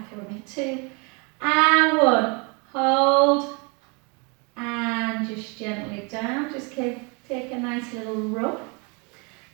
with me, 2, and 1, hold, and just gently down, just take a nice little rub,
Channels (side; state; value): left; quieter; 32.3 dB